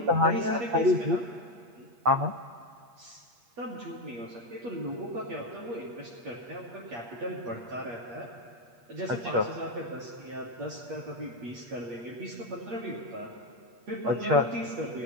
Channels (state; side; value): late; left; 8.5 ms